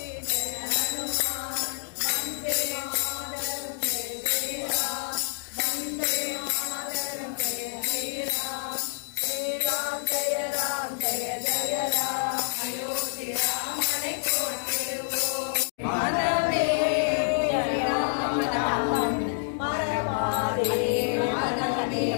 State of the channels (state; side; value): silent; right; digital silence